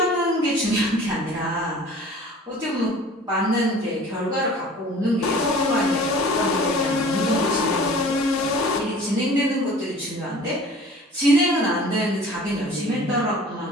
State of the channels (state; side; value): normal; both; correlation 0.45